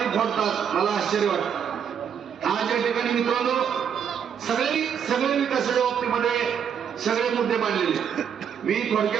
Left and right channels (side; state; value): left; quieter; 7.9 dB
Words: फोडतात. मला आश्चर्य वाटतं. आज या ठिकाणी मित्रांनो सगळे विकासाच्या बाबतीमध्ये सगळे मुद्दे मांडलेले. मी